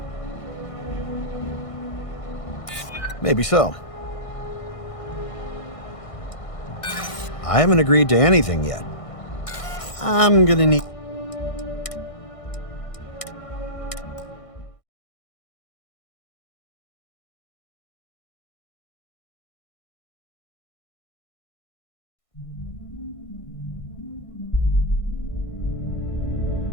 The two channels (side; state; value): right; late; 1.6 ms